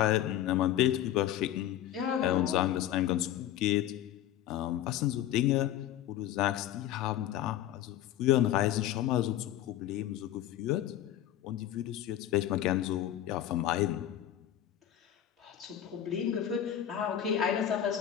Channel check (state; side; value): quieter; right; 11.8 dB